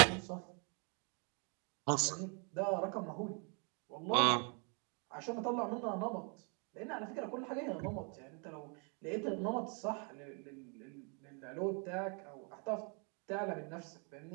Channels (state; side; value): quieter; left; 37.1 dB